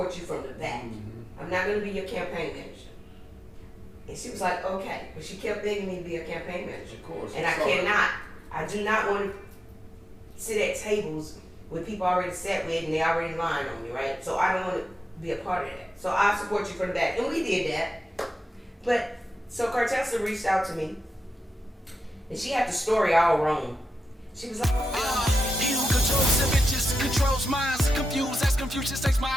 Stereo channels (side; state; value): both; normal; correlation 0.90